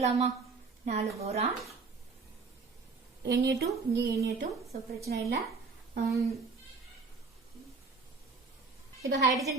4 போரான் Na2 இங்க Na2 சோ பிரச்சனை இல்ல. இப்ப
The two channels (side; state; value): left; quieter; 4.4 dB